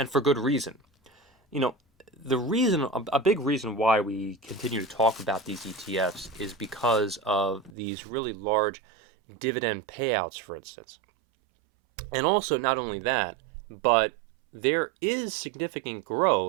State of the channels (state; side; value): drops out; left; at 7.7 s